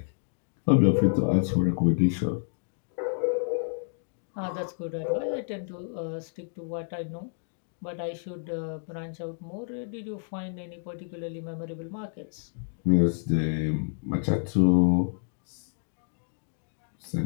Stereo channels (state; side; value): silent; right; digital silence